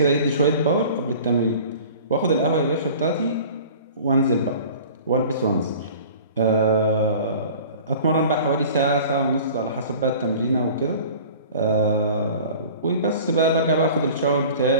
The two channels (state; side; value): inverted; both; correlation -0.44